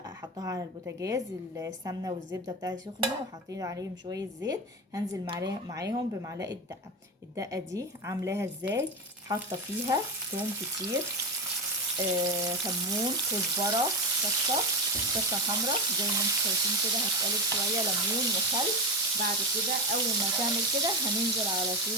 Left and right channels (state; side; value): normal; both; correlation 0.17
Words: حطها على البوتاجاز، السمنه والزبده بتاعتي سخنه وحطيت عليهم شويه زيت. هنزل معاهم بمعلقه دقه. الدقه دي عاملاها ازاي؟ حاطه فيها توم كتير، كمون، كزبره، شطه حمراء زي ما انتم شايفين كده. هتقلب شويه ليمون وخل. بعد كده اول ما تعمل كده هننزل على